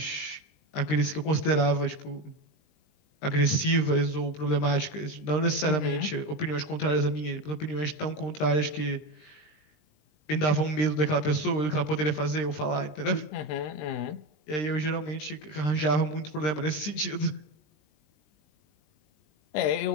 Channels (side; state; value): right; late; 20 ms